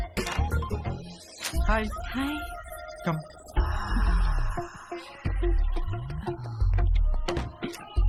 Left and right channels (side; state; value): both; identical; correlation 1.00